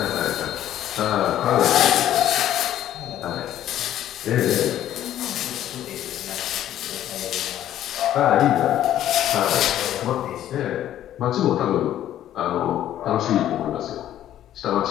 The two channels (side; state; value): right; quieter; 12.0 dB